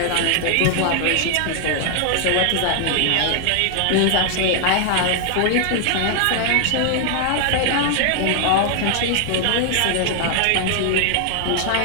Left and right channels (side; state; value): both; different; correlation 0.00